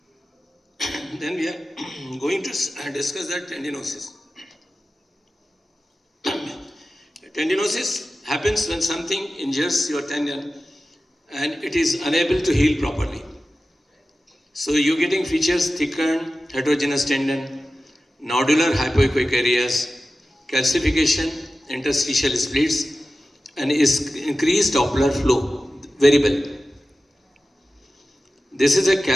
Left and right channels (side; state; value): both; normal; correlation 0.94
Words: Then we are going to discuss that tendinosis. Tendinosis happens when something injures your tendon and it is unable to heal properly. So you're getting features thickened, heterogeneous tendon, nodular hypoechoic areas, calcification, interstitial splits, and is increased Doppler flow, variable. This is a